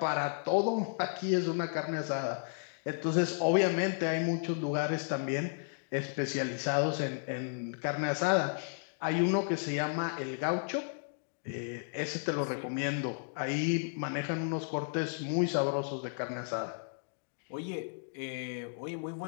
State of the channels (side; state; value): right; silent; digital silence